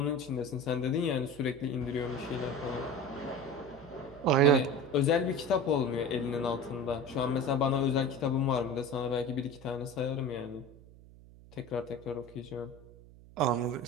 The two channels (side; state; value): right; noise; hum, 21 dB below the sound